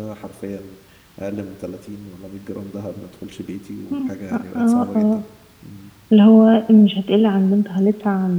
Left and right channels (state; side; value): identical; both; correlation 1.00